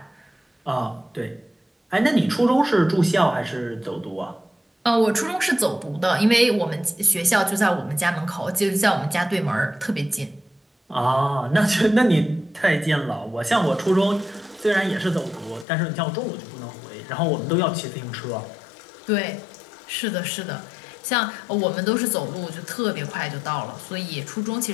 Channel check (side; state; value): right; drops out; at 15.7 s